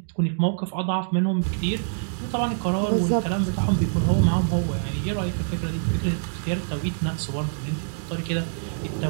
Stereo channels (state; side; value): silent; left; digital silence